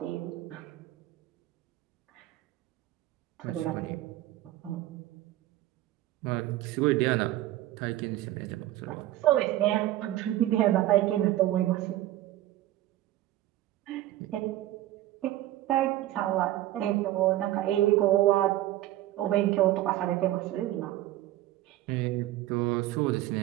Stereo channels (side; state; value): left; quieter; 14.8 dB